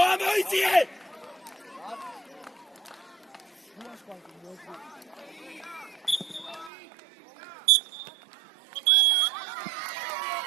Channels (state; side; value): drops out; left; at 6.7 s